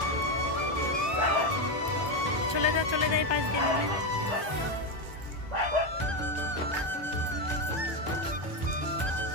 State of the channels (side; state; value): left; late; 1.2 ms